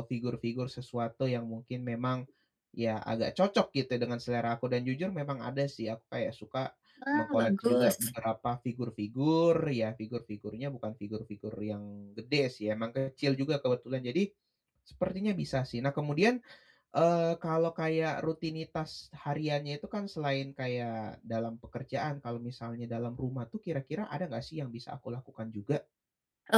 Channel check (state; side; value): identical; both; correlation 1.00